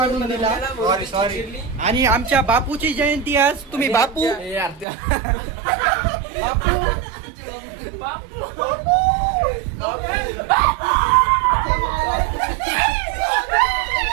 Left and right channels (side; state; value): left; drops out; at 4.9 s